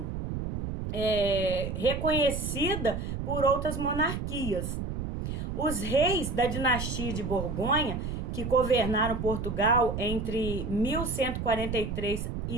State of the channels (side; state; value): right; noise; rumble, 4 dB below the sound